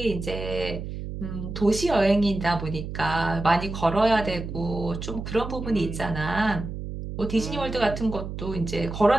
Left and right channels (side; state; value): right; noise; hum, 7 dB below the sound